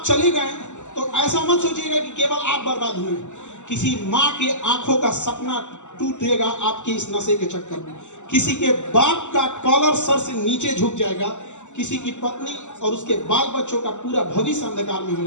चले गए तो ऐसा मत सोचिएगा कि केवल आप बर्बाद हुए। किसी माँ के आंखों का सपना टूटेगा आपके इस नशे के चक्कर में। किसी के बाप का कॉलर सर से नीचे झुक जाएगा, किसी की पत्नी और उसके बाल बच्चों का पूरा भविष्य अंधकार में हो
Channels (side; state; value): right; late; 0.84 ms